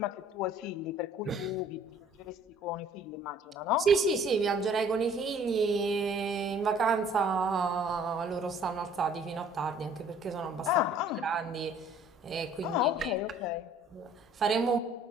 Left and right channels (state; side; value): normal; both; correlation 0.55